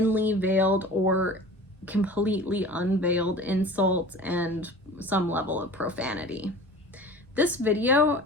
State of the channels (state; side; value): normal; both; correlation 0.40